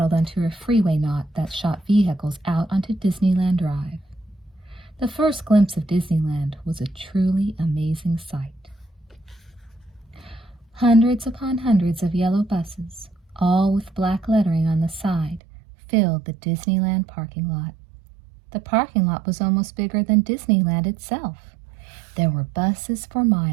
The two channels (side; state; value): left; drops out; at 15.4 s